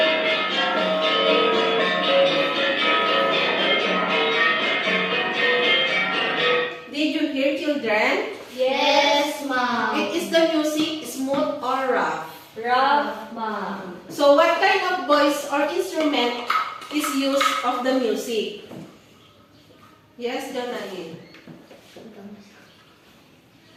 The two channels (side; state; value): both; identical; correlation 1.00